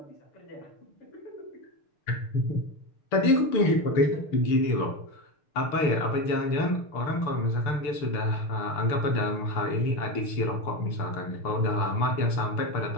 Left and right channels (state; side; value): late; right; 6.9 ms